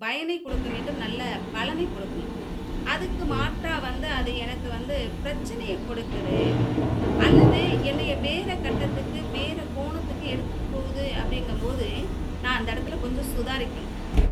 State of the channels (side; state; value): both; identical; correlation 1.00